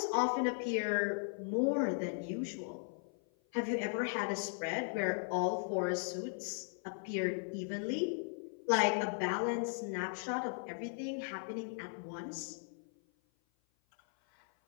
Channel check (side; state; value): right; silent; 53 dB below the other